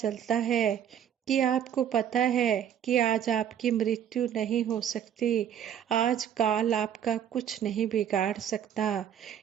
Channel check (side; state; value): left; quieter; 9.4 dB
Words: है कि आपको पता है कि आज आपकी मृत्यु नहीं हो सकती। आज काल आपका कुछ नहीं बिगाड़ सकता।